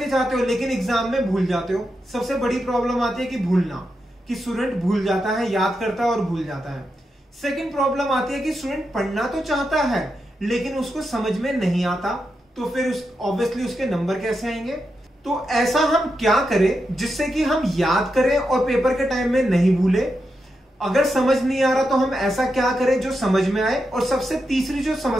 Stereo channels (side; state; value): both; normal; correlation 0.86